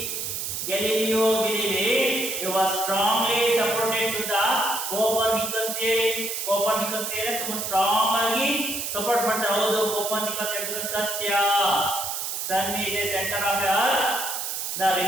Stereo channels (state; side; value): noise; right; hiss, 3 dB below the sound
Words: Galileo Galilei he was strongly supported to the Copernicus theory. Copernicus theory ತುಂಬಾ ಸ್ಟ್ರಾಂಗ್ ಆಗಿ ಸಪೋರ್ಟ್ ಮಾಡ್ತಾರೆ. ಹೌದು, ಕೋಪರ್ನಿಕಸ್ ಹೇಳಿದ್ರೆ ಸತ್ಯ. Sun is a center of the earth. The